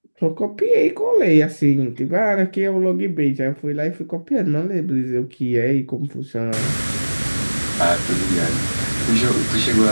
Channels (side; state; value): both; inverted; correlation -1.00